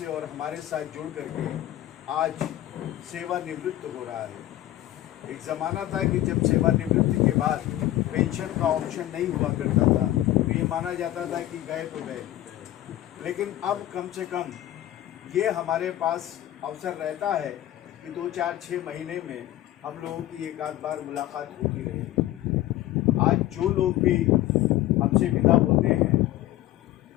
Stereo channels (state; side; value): quieter; right; 14.4 dB